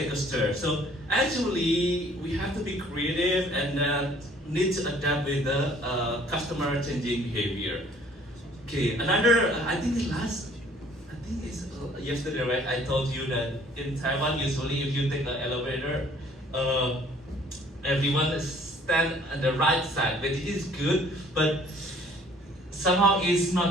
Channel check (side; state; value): both; normal; correlation 0.56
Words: a stair. So actually we have to be creative and need to adapt with the customer changing behavior. Okay, another, I think it's yesterday, right? I told you that in Taiwan, usually if you take an elevator, everyone stand on the right side, but it is good. But somehow it's